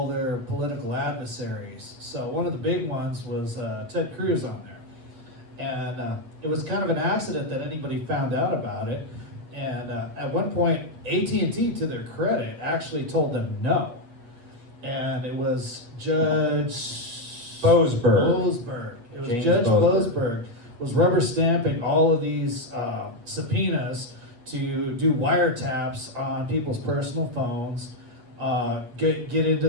their political adversaries. So one of the big ones was Ted Cruz on there. And it was kind of an accident that anybody found out about it. And at one point, AT&T, to their credit, actually told them no. And it was Judge Boasberg. It was James Judge Boasberg Boasberg was rubber stamping all of these subpoenas to do wiretaps on people's personal phones, get into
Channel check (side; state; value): left; late; 8.3 ms